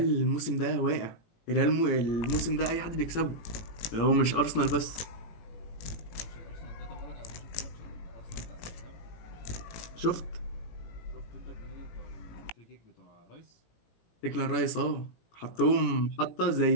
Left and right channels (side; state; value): right; late; 17 ms